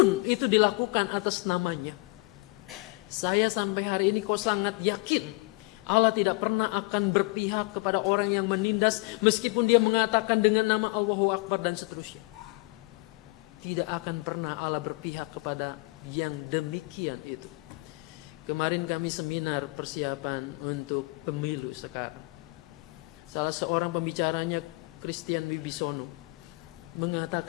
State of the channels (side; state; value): right; quieter; 26.5 dB